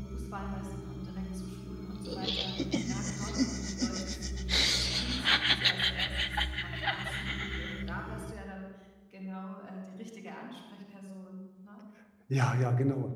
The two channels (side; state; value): both; identical; correlation 1.00